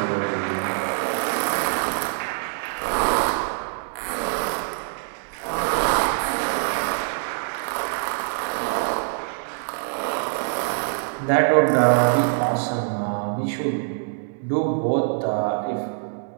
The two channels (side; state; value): left; silent; digital silence